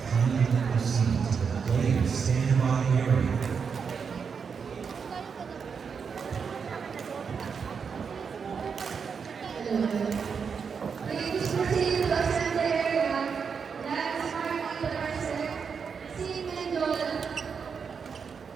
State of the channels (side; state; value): left; quieter; 6.1 dB